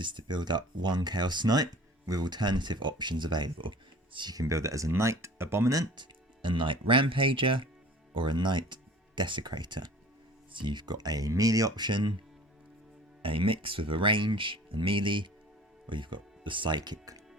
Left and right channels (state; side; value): normal; both; correlation 0.45